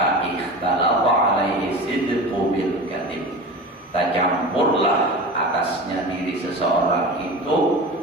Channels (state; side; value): normal; both; correlation 0.32